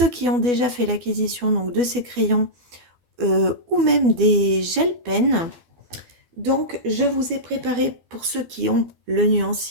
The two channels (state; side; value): late; left; 12 ms